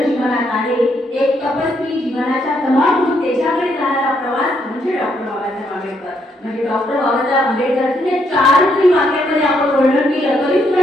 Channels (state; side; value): normal; both; correlation 0.74